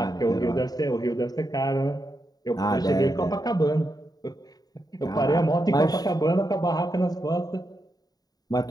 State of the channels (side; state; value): right; late; 0.18 ms